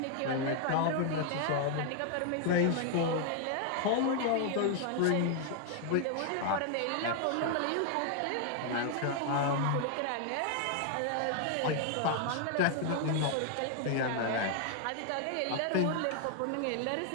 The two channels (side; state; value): both; different; correlation 0.00